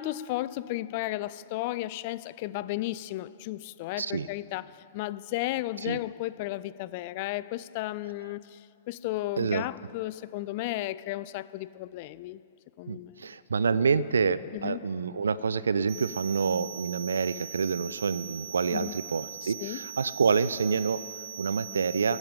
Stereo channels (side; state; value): both; inverted; correlation -0.64